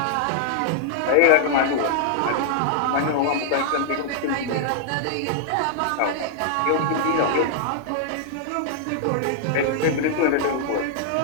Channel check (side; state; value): both; different; correlation -0.01